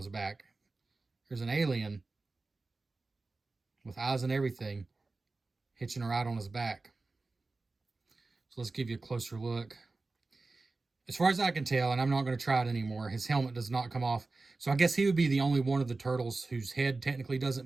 back. There's an alien with eyes and everything hitching a ride on his back. So let's give you a closer look. As far as I can tell, and I'm not going to try it anymore, his helmet does not come off. So I guess he would be the only one of the turtles whose head technically doesn't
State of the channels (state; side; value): quieter; left; 3.6 dB